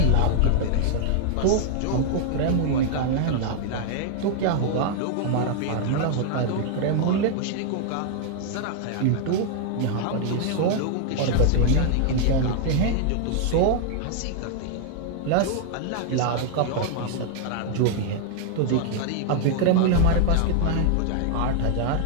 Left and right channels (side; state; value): both; different; correlation 0.00